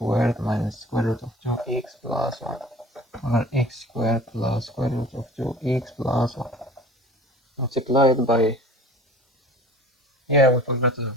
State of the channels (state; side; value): normal; both; correlation 0.44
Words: minus square root of 2x plus 1 over x squared plus square root of 2x plus 1 multiplied by, yeah, we forgot